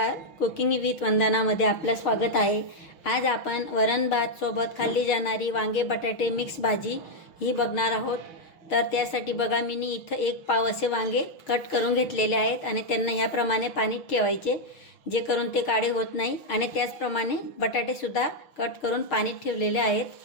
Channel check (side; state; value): right; late; 6.4 ms